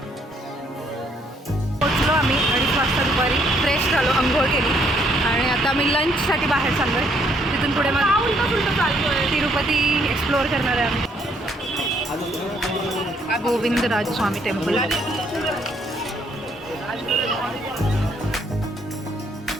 पोचलो आम्ही 2:30 वाजता दुपारी. फ्रेश झालो, अंघोळ केली आणि आता आम्ही लंचसाठी बाहेर चाललोय. तिथून पुढे मग तिरुपती एक्सप्लोअर करणार आहे आम्ही. गोविंदराज स्वामी टेम्पल.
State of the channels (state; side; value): normal; both; correlation 0.68